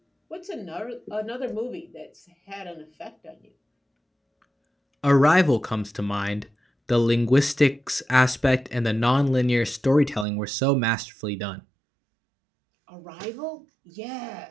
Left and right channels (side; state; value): left; drops out; at 10.2 s